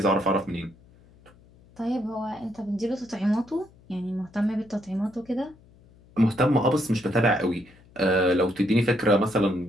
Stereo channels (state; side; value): noise; left; hum, 27 dB below the sound